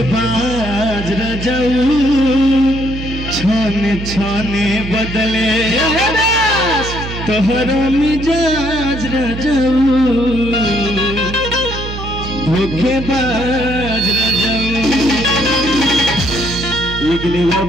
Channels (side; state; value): right; noise; hum, 8 dB below the sound